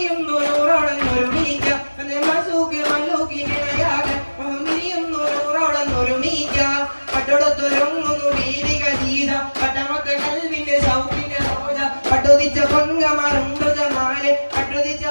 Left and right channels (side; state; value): both; inverted; correlation -1.00